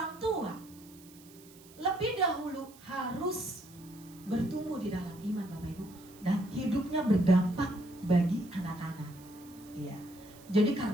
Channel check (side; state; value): right; noise; hiss, 23 dB below the sound